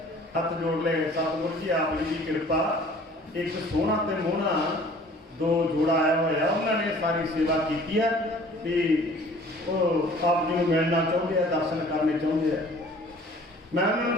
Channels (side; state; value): both; normal; correlation 0.51